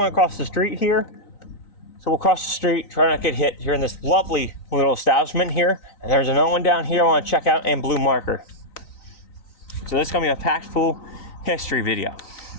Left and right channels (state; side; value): late; right; 3.9 ms